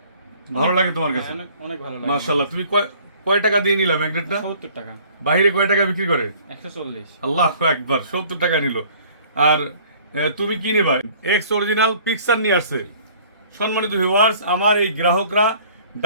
ভালো লাগে তোমার কাছে? অনেক অনেক ভালো লাগে। মাশাআল্লাহ। তুমি কয় টাকা দিয়ে নিলা ম্যাগনেটটা? 70 টাকা। বাইরে কয় টাকা বিক্রি করে? 140। আল্লাহু আকবার, 70 টাকা নিল। আর তুমি কি নেবা? এক্স অরিজিনাল পিকচার নিয়ে আসছে। সম্মানিত ভিউয়ার্স, আমার এই গ্রাহকরা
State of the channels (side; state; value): both; inverted; correlation -0.53